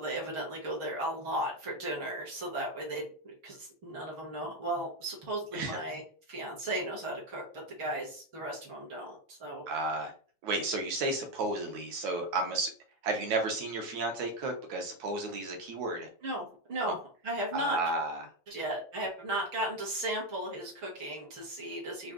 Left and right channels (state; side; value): late; left; 6.4 ms